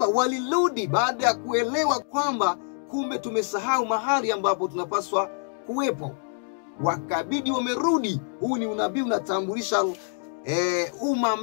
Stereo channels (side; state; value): right; silent; digital silence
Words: walirudi baada ya kuelewa kwamba kumbe tumesahau mahali ambapo tunapaswa kuwepo. Wakabidi wamerudi. Huu ni unabii unatambulisha umma